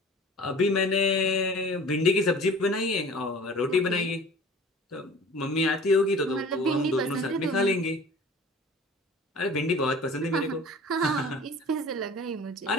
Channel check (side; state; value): both; normal; correlation 0.44